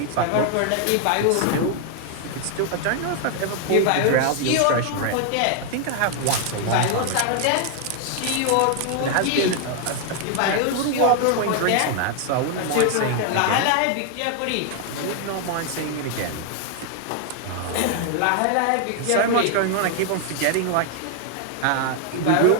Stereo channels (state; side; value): different; both; correlation 0.00